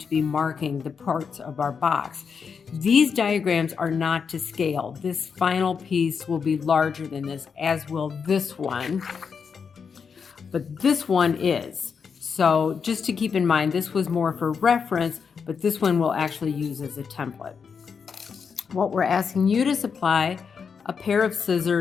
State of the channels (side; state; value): right; quieter; 6.1 dB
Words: be marking the parts of our box. These diagrams are not to scale. This final piece will be larger than this, as will this one, but this one is. So just to keep in mind, this was more for reference, but this one we'll actually use as a template. What we're asking you to supply: a pair of